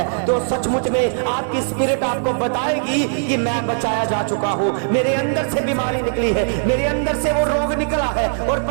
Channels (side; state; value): left; silent; digital silence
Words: तो सचमुच में आपकी स्पिरिट आपको बताएगी कि मैं बचाया जा चुका हूँ। मेरे अंदर से बीमारी निकली है, मेरे अंदर से वो रोग निकला है और